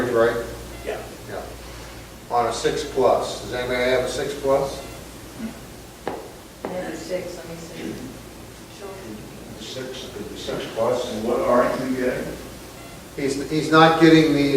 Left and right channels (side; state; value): both; identical; correlation 1.00